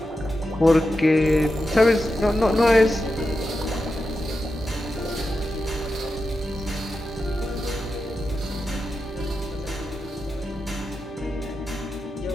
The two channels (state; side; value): normal; both; correlation 0.89